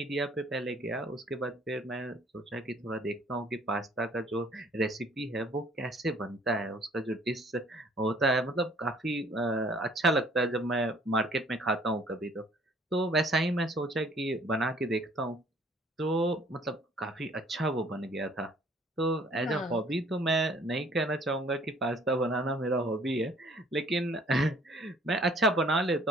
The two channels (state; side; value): normal; both; correlation 0.57